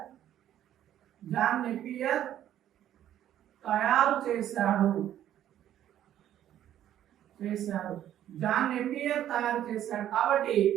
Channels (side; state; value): left; quieter; 11.5 dB